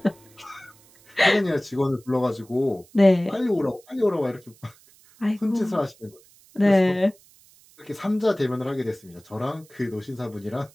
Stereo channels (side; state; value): right; noise; hiss, 28 dB below the sound